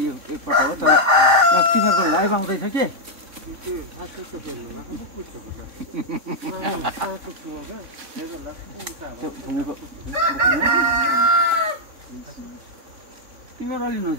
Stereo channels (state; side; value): late; left; 3.5 ms